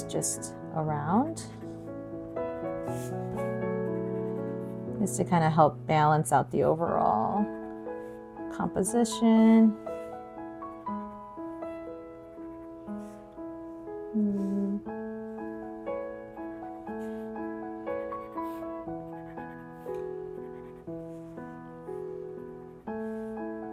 just around, just to kind of help balance out the overall composition.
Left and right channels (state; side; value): identical; both; correlation 1.00